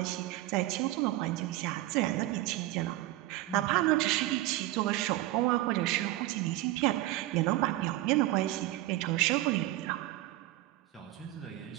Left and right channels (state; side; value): quieter; left; 16.7 dB